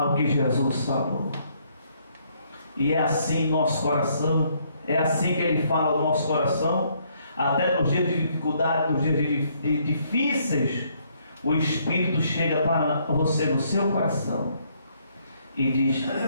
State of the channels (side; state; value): both; inverted; correlation -0.69